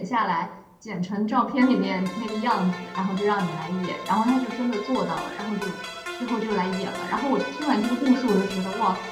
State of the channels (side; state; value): both; identical; correlation 1.00